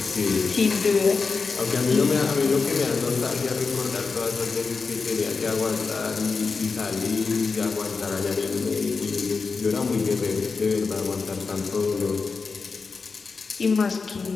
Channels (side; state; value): right; quieter; 4.7 dB